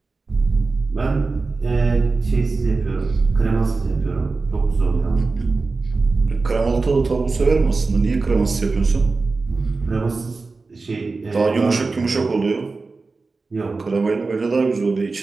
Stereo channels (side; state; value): left; quieter; 3.9 dB